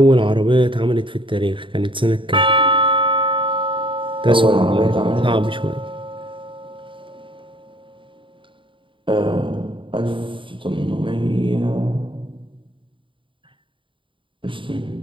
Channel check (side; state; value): left; late; 0.25 ms